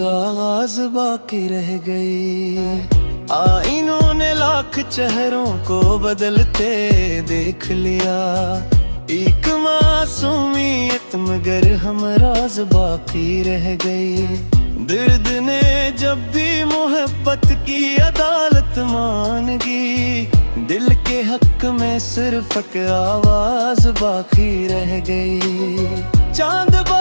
बाकी रह गई। आईनों ने लाख चेहरों को बदलते देख लिया, एक मासूमियत मगर हम राज बाकी रह गए। दर्द ने जब भी मोहब्बत की अदालत मांगी, दिल के हक में सिर्फ एक आवाज बाकी रह गई। चांद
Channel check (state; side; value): inverted; both; correlation -1.00